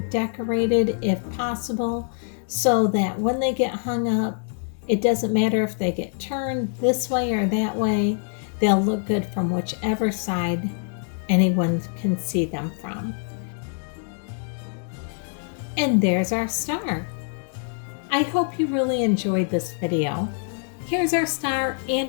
decorated if possible, so that when they get hung up, it doesn't matter if they get turned this way or that way, they'll look good from whichever side anyone can see them from. And there's our star. I hope you really enjoyed this video. Here's our star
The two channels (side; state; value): right; silent; 56 dB below the other